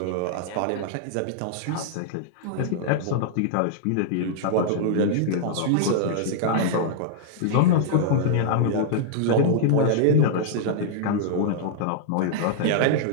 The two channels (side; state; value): both; different; correlation -0.01